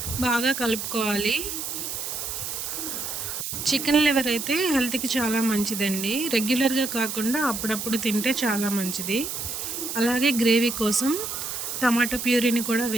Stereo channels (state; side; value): noise; right; hiss, 5 dB below the sound